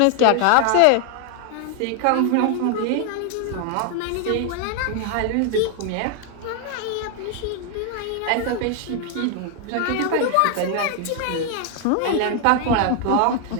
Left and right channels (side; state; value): both; different; correlation 0.00